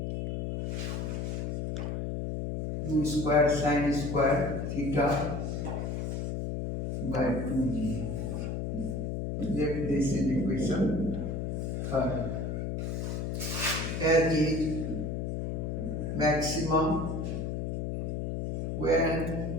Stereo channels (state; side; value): noise; left; hum, 2 dB below the sound